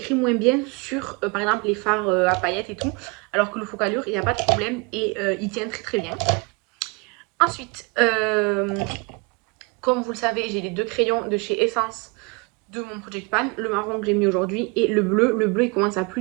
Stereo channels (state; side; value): quieter; left; 29.4 dB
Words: moins bien sur, par exemple, les fards à paillettes et tout. Alors que le Focalure, il n'y a pas de problème et il tient très très bien. Ensuite, comme vous le savez, j'ai les deux crayons de chez Essence de mon Project Pan, le marron que j'ai mis aujourd'hui et le bleu. Le bleu, il commence à